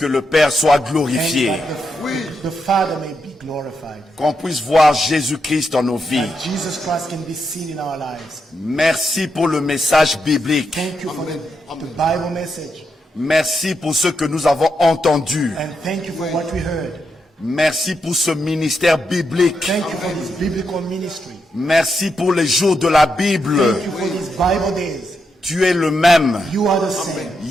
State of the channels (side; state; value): both; normal; correlation 0.83